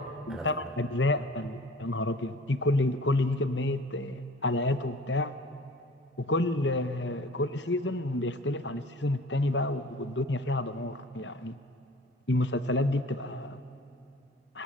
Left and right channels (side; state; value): both; normal; correlation 0.45